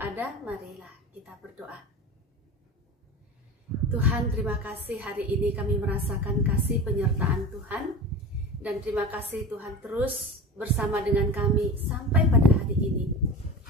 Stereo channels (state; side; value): normal; both; correlation 0.30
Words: marilah kita berdoa. Tuhan, terima kasih hari ini kami merasakan kasih penyertaan Tuhan. Dan terima kasih Tuhan terus bersama dengan kami sampai pada hari ini.